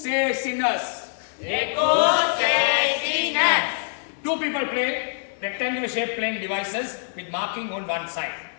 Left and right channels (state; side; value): silent; right; 60 dB below the other